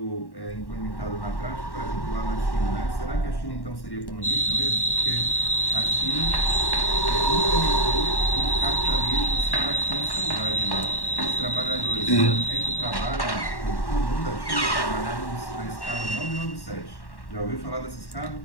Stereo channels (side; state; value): right; late; 1.1 ms